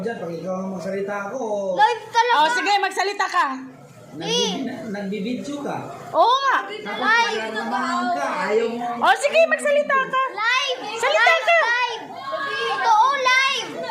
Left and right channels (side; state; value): both; identical; correlation 1.00